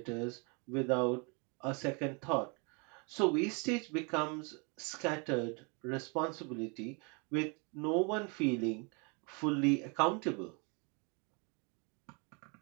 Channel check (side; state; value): left; quieter; 33.4 dB